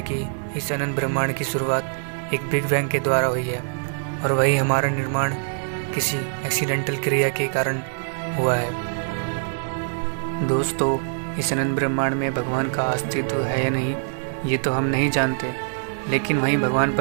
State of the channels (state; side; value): silent; left; digital silence